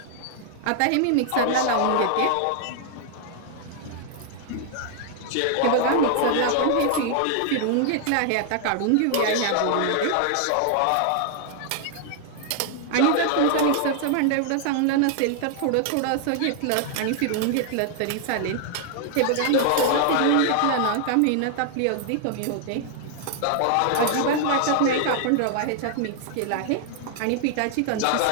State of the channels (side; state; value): both; different; correlation 0.00